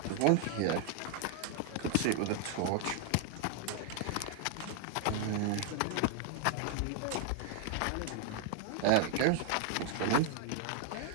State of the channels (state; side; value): different; both; correlation 0.00